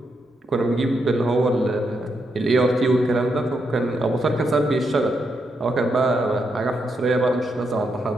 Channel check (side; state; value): both; normal; correlation 0.81